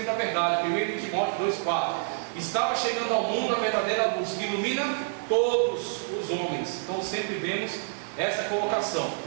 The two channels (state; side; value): silent; left; digital silence